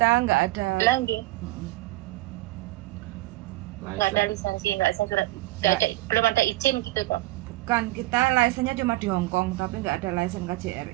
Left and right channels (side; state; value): left; quieter; 18.8 dB